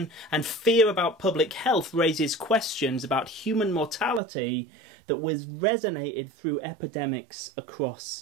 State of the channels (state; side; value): drops out; left; at 4.2 s